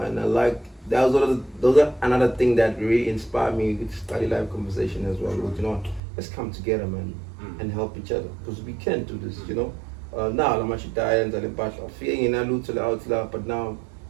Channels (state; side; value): drops out; left; at 6.0 s